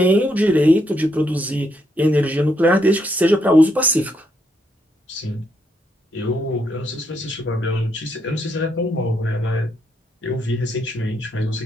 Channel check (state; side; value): normal; both; correlation 0.76